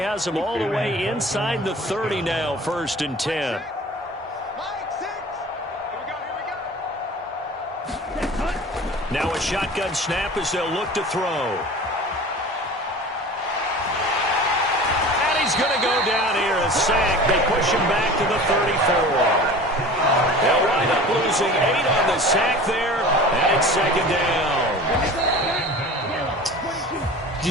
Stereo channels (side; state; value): both; normal; correlation 0.39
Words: has them all the way inside the 30 now, 1st and 10. Now a shotgun snap as they'll look to throw. And he's going to go down here, a sack. They push him back to the 34. They'll wind up losing 8 on the sack there, and it's second down.